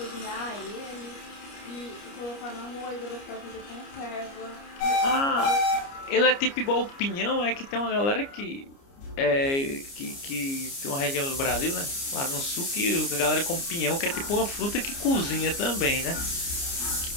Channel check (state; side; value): late; right; 29 ms